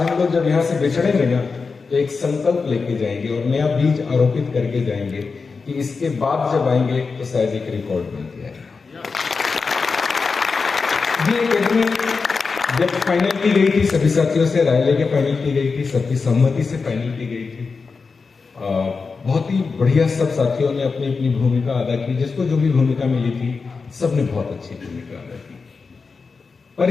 लोग जब यहाँ से बिछड़ेंगे ना तो एक संकल्प लेके जाएंगे और नया बीज आरोपित करके जाएंगे कि इसके बाद जब आएंगे तो शायद एक रिकॉर्ड बन के आएगा। ये एकेडमी जब फाइनल की गई थी, सभी साथियों से राय लेके फाइनल की गई थी, सबकी सहमति से फाइनल की गई थी। बहुत ही बढ़िया सब साथियों ने अपनी अपनी भूमिका अदा की। जिसको जो भी भूमिका मिली थी सबने बहुत अच्छी भूमिका अदा की।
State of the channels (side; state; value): right; quieter; 4.7 dB